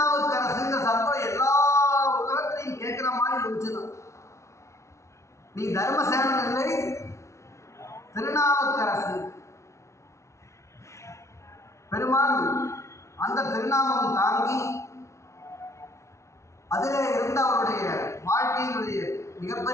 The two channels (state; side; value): late; right; 0.14 ms